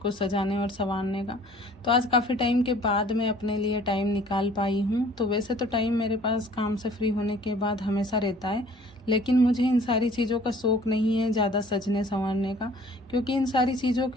सजाने और संवारने का। तो आज काफ़ी टाइम के बाद मैं अपने लिए टाइम निकाल पाई हूँ। तो वैसे तो टाइम मेरे पास काम से फ्री होने के बाद हमेशा रहता है, लेकिन मुझे इन सारी चीज़ों का शौक़ नहीं है ज़्यादा सजने संवरने का, क्योंकि इन सारी चीज़ों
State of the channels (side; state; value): both; normal; correlation 0.53